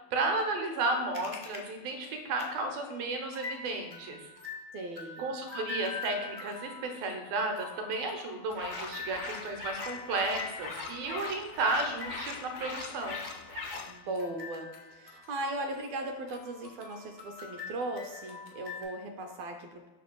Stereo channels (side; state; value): left; late; 12 ms